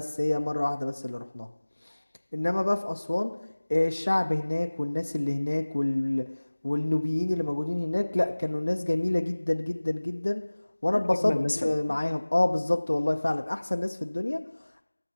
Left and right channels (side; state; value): both; inverted; correlation -1.00